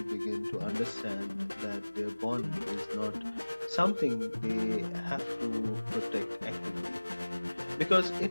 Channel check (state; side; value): inverted; both; correlation -1.00